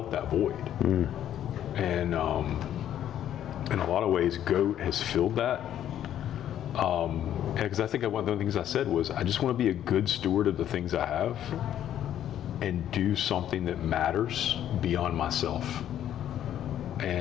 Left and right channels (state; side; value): quieter; right; 11.0 dB